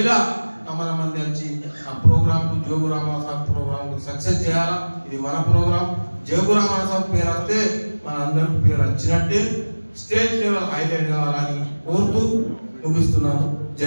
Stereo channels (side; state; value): both; inverted; correlation -1.00